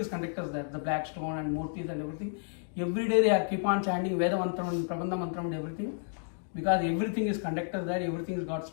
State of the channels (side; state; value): right; silent; digital silence